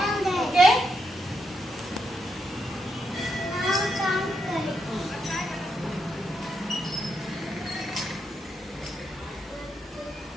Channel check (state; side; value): normal; both; correlation 0.81